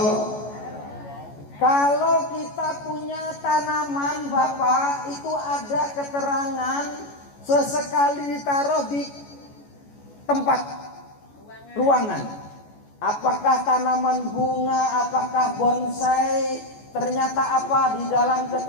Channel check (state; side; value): late; right; 14 ms